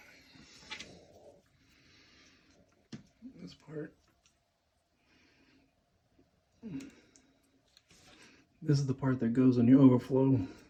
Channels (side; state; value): both; identical; correlation 1.00